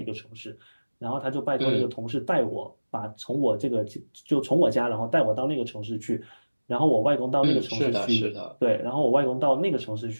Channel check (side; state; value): both; inverted; correlation -1.00